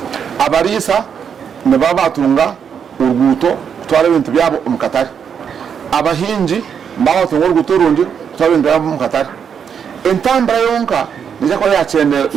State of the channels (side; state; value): left; quieter; 7.4 dB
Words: abarisa ne babatunga urguto kutwara ibintu byabo umukatari abahinji babatunga urguto rundi kutwara ibintu byabo umukatari intambara yonka nija ko